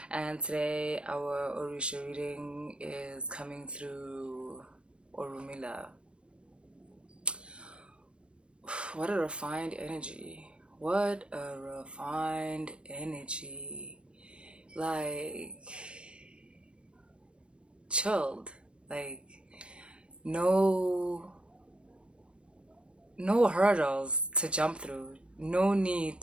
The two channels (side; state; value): left; late; 0.057 ms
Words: and today our Orisha reading is coming through Urumila. What a refined energy. What a refined energy. Like, chilled. Like, no hurdles to jump through. No need